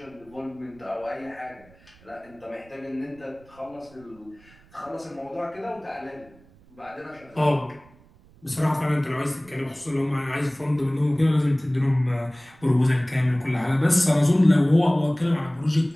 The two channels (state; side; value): noise; right; rumble, 27 dB below the sound